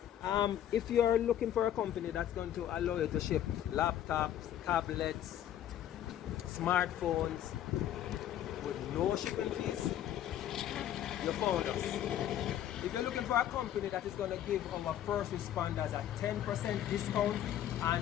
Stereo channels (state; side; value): quieter; right; 11.3 dB